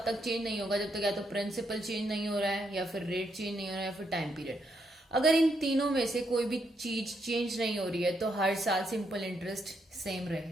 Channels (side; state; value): both; normal; correlation 0.78